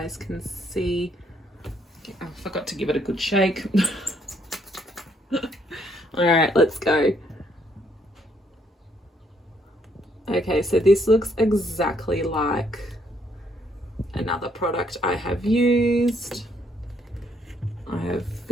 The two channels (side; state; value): both; normal; correlation 0.70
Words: can see. I forgot to give it a good shake. All right, let's go. Okay, so this looks exactly like another product I have used. I have